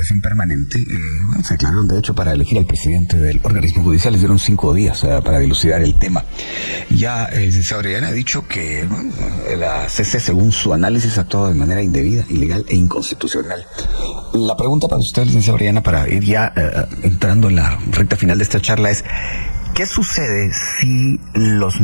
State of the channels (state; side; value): inverted; both; correlation -1.00